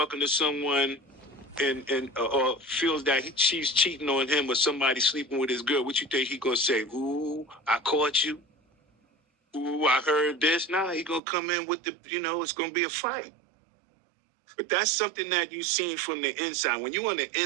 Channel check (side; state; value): left; drops out; at 11.2 s